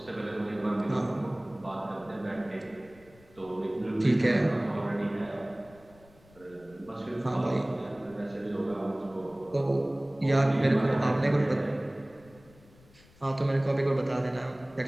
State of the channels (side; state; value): left; noise; rumble, 26 dB below the sound